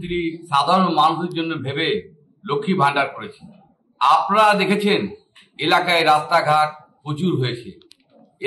সাধারণ মানুষের জন্য ভেবে লক্ষ্মী ভান্ডার করেছে। আপনারা দেখেছেন এলাকায় রাস্তাঘাট প্রচুর হয়েছে,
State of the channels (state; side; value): identical; both; correlation 1.00